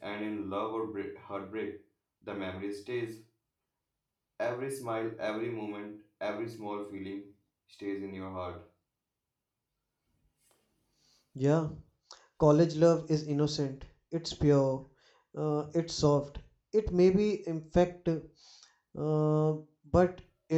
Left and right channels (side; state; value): both; identical; correlation 1.00